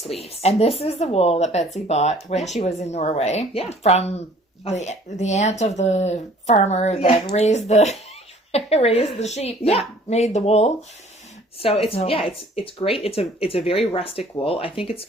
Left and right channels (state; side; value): normal; both; correlation 0.54